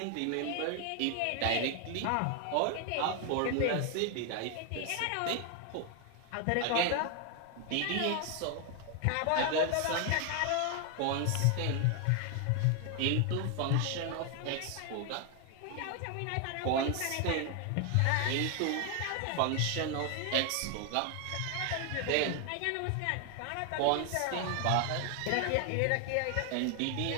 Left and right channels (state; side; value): different; both; correlation 0.01